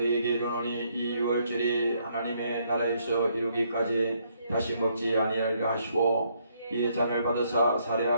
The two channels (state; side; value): inverted; both; correlation -0.71